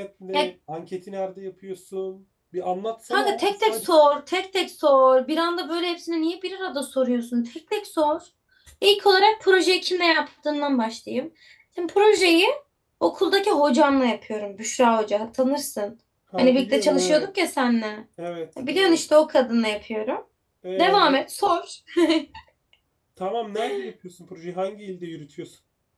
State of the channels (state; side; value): identical; both; correlation 1.00